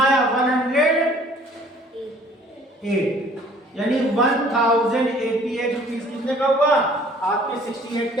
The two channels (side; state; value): both; normal; correlation 0.55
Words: आया 108, यानी 1088 रुपीस कितने का हुआ आपके 68